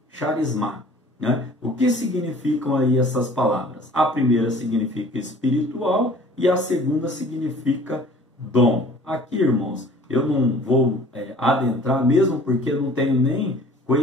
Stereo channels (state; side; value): normal; both; correlation 0.50